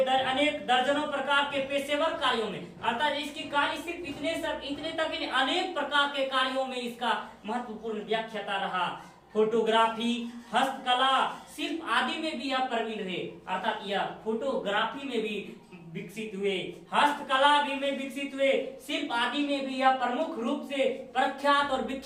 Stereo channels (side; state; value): both; identical; correlation 1.00